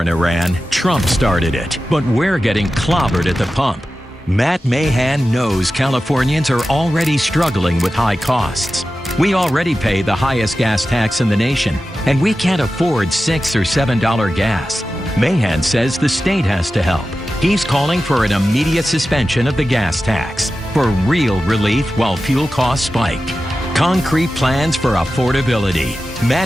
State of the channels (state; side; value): normal; both; correlation 0.93